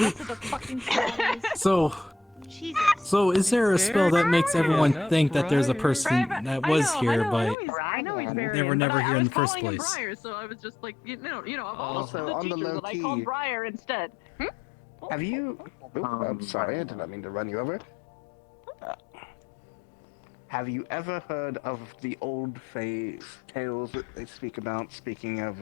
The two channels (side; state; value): right; drops out; at 7.6 s